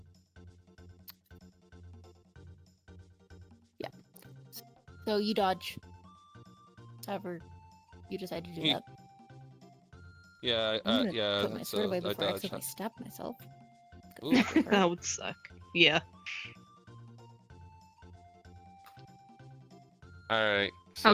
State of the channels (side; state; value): both; identical; correlation 1.00